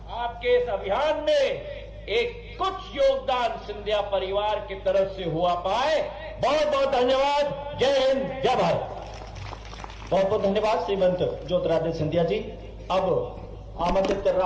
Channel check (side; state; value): both; identical; correlation 1.00